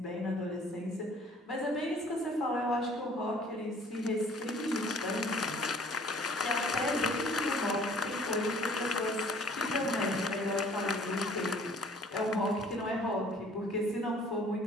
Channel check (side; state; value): both; normal; correlation 0.54